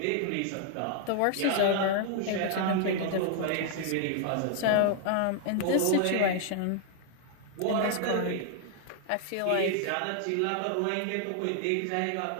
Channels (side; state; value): both; different; correlation 0.00